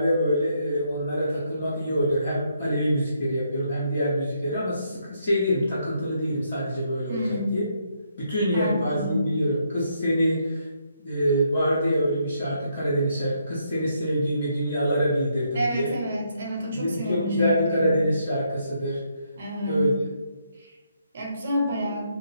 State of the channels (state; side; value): inverted; both; correlation -0.75